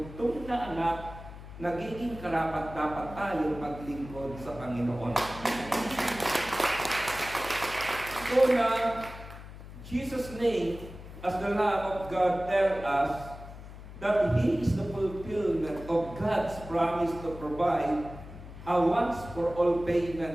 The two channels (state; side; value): noise; left; hum, 14 dB below the sound